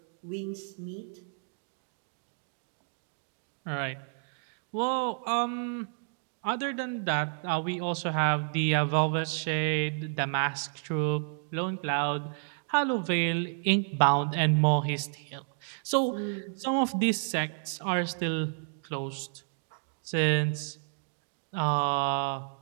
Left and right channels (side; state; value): left; silent; digital silence